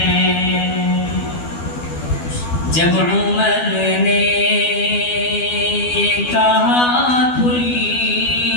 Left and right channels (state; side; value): late; right; 12 ms